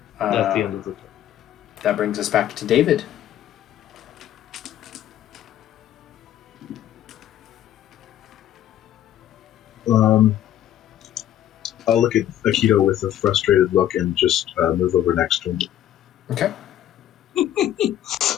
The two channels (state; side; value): quieter; right; 11.7 dB